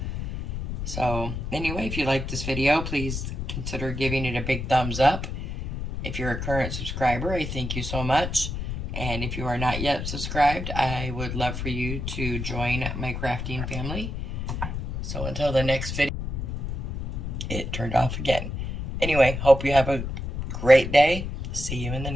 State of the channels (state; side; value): noise; left; rumble, 4 dB below the sound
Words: So anyway, if you like this video, please consider giving it a big thumbs up. If you're a current subscriber, I thank you so much. And if you are not yet subscribed, I would love for you to join my crafting family. So until the next video, it turned off again. Anyway, hope you have a great day. See you in the